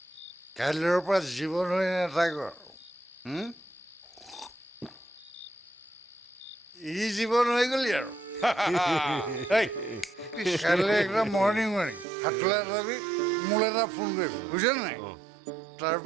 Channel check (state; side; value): drops out; left; at 12.1 s